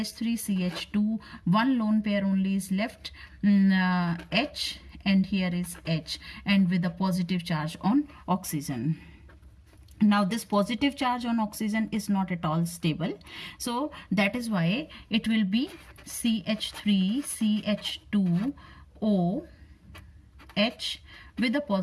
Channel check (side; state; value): both; identical; correlation 1.00